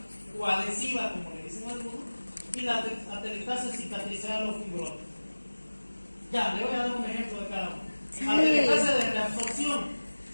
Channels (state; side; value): inverted; both; correlation -1.00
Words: o adhesiva, como le dicen algunos, y la atelectasia cicatricial o fibrosa. Ya, le voy a dar un ejemplo de cada uno. Atelectasia de reabsorción.